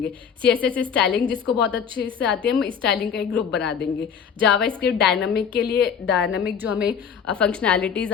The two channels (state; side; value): quieter; right; 7.2 dB